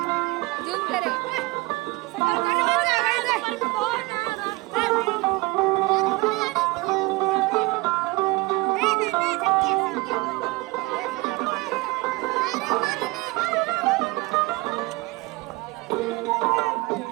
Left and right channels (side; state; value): left; quieter; 23.6 dB